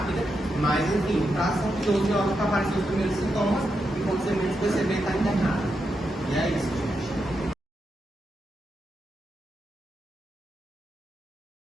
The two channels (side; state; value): both; normal; correlation 0.85